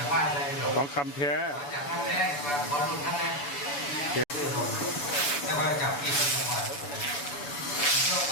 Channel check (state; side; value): late; right; 6.9 ms